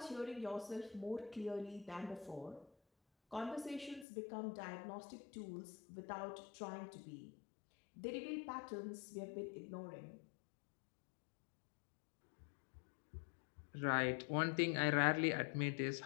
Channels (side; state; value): right; drops out; at 4.0 s